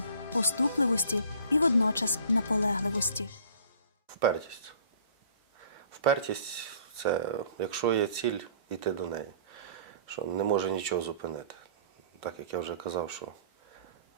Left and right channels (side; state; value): both; inverted; correlation -0.51